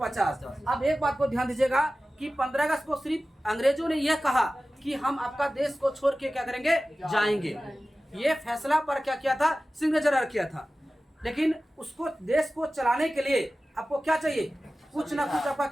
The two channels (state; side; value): normal; both; correlation 0.96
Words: अब एक बात को ध्यान दीजिएगा कि 15 अगस्त को सिर्फ अंग्रेजों ने यह कहा कि हम आपका देश को छोड़ के क्या करेंगे, जाएंगे। ये फैसला पर क्या किया था, सिग्नेचर किया था। लेकिन उसको देश को चलाने के लिए आपको क्या चाहिए, कुछ ना कुछ आपका